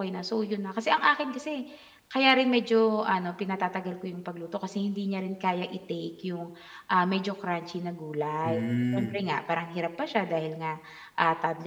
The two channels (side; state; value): both; identical; correlation 1.00